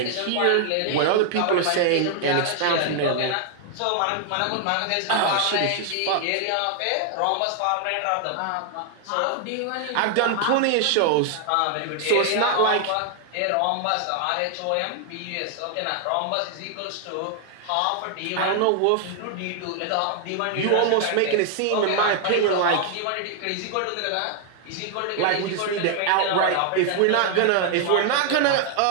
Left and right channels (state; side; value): different; both; correlation 0.00